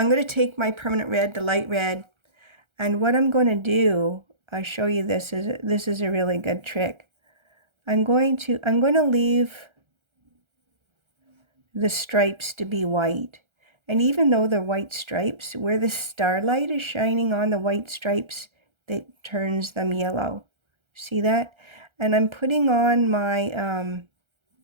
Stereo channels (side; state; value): left; late; 1.3 ms